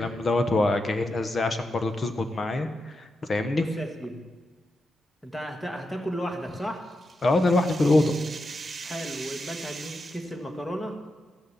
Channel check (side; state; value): both; normal; correlation 0.87